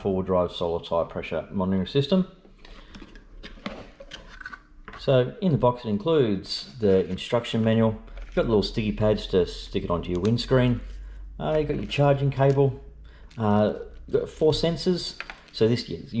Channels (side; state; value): both; identical; correlation 1.00